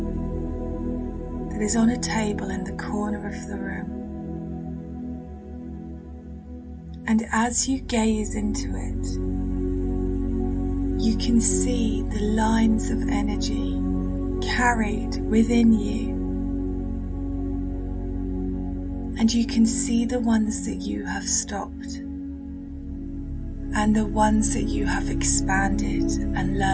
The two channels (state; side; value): identical; both; correlation 1.00